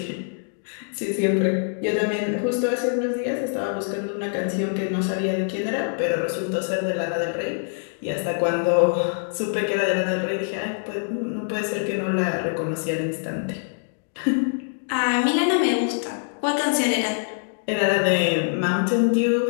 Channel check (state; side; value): silent; right; digital silence